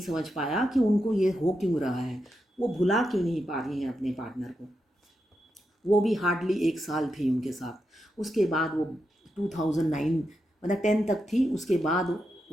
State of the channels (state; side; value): normal; both; correlation 0.86